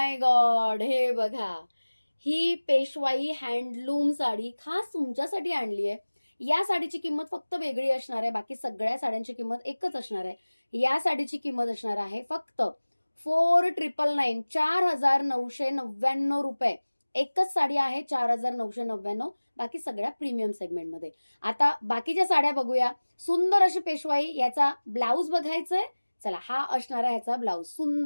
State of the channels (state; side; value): inverted; both; correlation -1.00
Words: गॉड, हे बघा. ही पेशवाई हँडलूम साडी खास तुमच्यासाठी आणली आहे. या साडीची किंमत फक्त वेगळी असणार आहे, बाकी सगळ्या साड्यांची किंमत एकच असणार आहे. या साडीची किंमत असणार आहे फक्त 4999, 4999 रुपये. एकच साडी आहे 4999, बाकी सगळ्या प्रीमियम सेगमेंटमध्ये. आता बाकीच्या साड्या बघूया. सुंदर अशी पेशवाई. याचा ब्लाऊज बघायचंय. चला, हा असणार आहे ह्याचा ब्लाऊज.